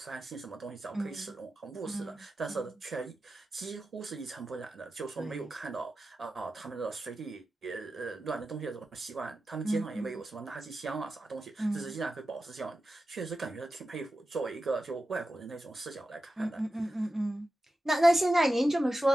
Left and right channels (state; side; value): normal; both; correlation 0.92